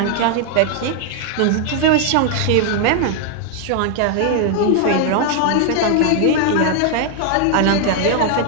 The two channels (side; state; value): both; different; correlation 0.00